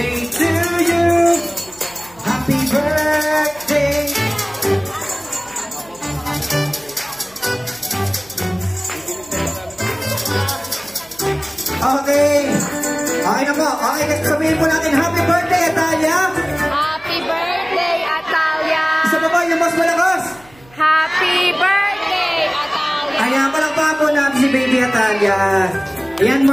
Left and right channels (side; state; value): right; noise; hum, 27 dB below the sound